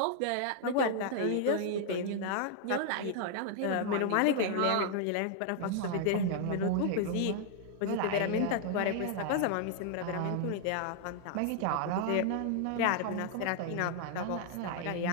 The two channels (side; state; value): both; different; correlation 0.00